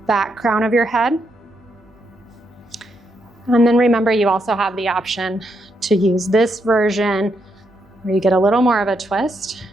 back crown of your head. And then remember, you also have the option to use this version where you get a little more of a twist,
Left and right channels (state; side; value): normal; both; correlation 0.79